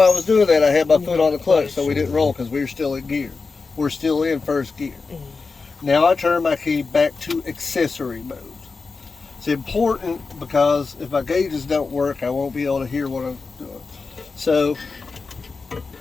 I was doing that, I had my foot on the clutch so we didn't roll because we were still in gear. We're still in first gear. Now I turn my key back to accessory mode. It's important because if my gauges don't work, I won't be able to hear what I'm doing. So,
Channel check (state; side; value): quieter; right; 4.4 dB